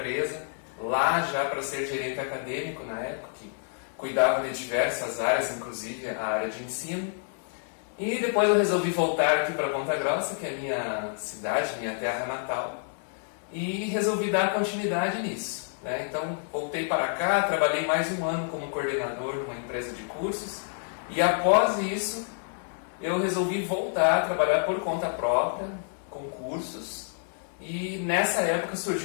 lá já para ser gerente acadêmico na época, que cuidava de diversas áreas, inclusive a área de ensino. E depois eu resolvi voltar aqui para Ponta Grossa, que é a minha cidade, minha terra natal, e resolvi dar continuidade nisso, né? Então voltei para cá, trabalhei mais um ano como coordenador numa empresa de cursos, e após isso eu resolvi voltar a trabalhar por conta própria, com cursos, e nessa época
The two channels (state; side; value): silent; right; digital silence